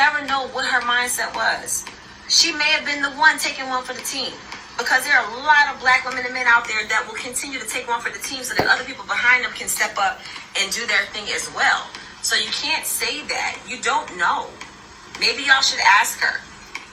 know what her mindset was. She may have been the one taking one for the team, because there are a lot of black women and men out there that will continue to take one for the team so that other people behind them can step up and do their thing as well. So you can't say that. You don't know. Maybe y'all should ask her,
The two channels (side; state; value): both; identical; correlation 1.00